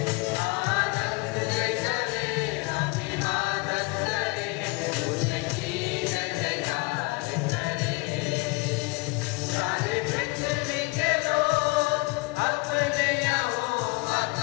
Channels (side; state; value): right; quieter; 26.5 dB